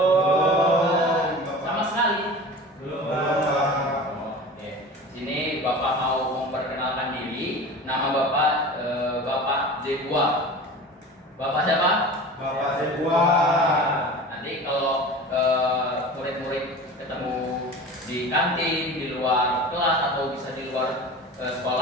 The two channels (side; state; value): both; normal; correlation 0.36